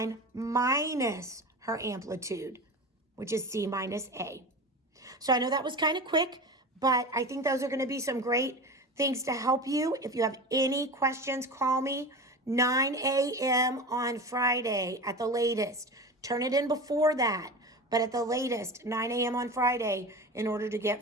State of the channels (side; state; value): both; normal; correlation 0.30